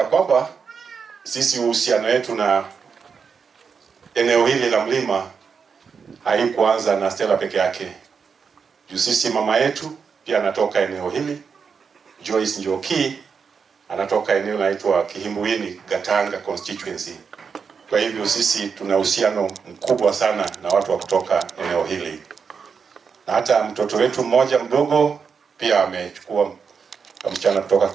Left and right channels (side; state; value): left; quieter; 5.9 dB